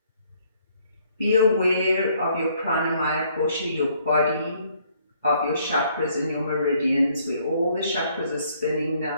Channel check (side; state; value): both; inverted; correlation -0.65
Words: Be aware of your pranamaya kosha, your body, of your chakras and your meridians, where all the chakras are spinning